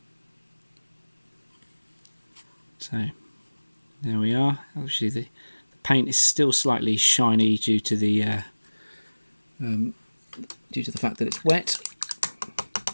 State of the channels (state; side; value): inverted; both; correlation -1.00